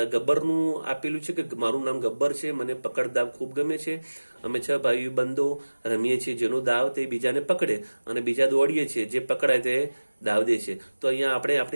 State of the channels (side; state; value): both; inverted; correlation -1.00